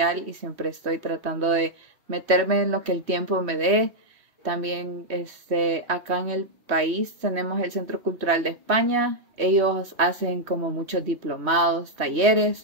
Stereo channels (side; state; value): left; late; 3.1 ms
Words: y siempre estoy tratando de meterme en lo que el tiempo me dé. También acá en el país tenemos el Centro Cultural de España. Ellos hacen como muchos diplomados,